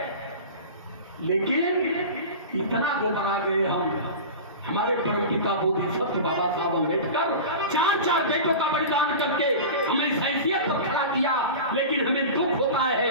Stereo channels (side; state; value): both; inverted; correlation -0.31